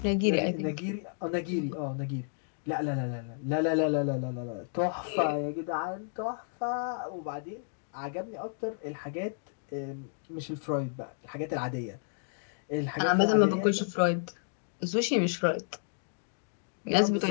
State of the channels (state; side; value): silent; right; digital silence